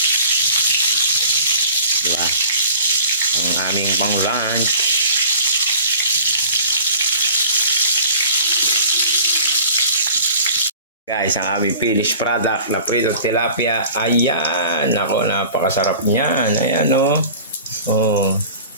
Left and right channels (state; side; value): inverted; both; correlation -0.44